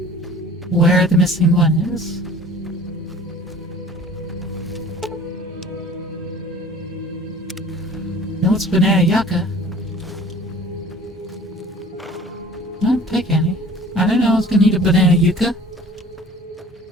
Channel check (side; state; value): both; normal; correlation 0.47